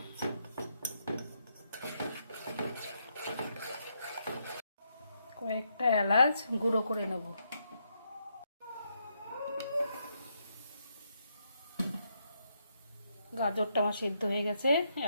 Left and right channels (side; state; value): both; inverted; correlation -0.78